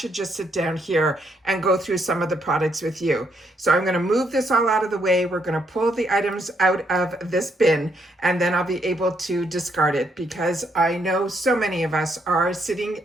just sit down here and go through some of the products with you. So I'm going to move this all out of the way. We're going to pull the items out of this bin, and then I'll be able to discard it, because I know so many of us are sitting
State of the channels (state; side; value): normal; both; correlation 0.74